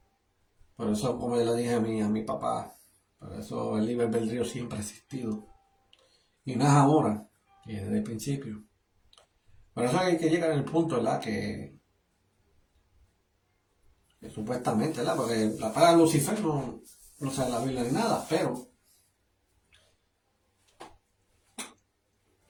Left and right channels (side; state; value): both; identical; correlation 1.00